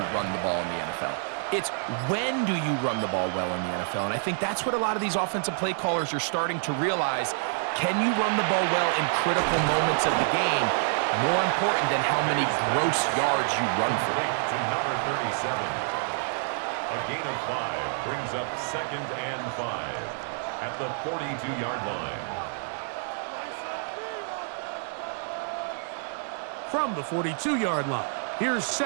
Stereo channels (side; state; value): left; silent; digital silence